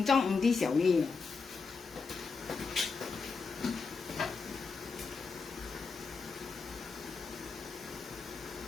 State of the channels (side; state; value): right; quieter; 4.8 dB